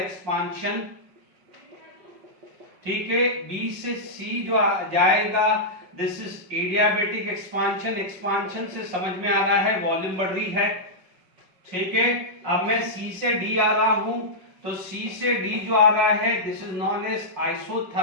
ठीक है। B से C जो जाएगा दिस इज एडियाबैटिक एक्सपांशन से समझ में आ रहा है वॉल्यूम बढ़ रही है, ठीक है। अब मैं C से D आ रहा हूं तो C से D जो आ रहा है this is known as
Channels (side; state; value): left; late; 5.4 ms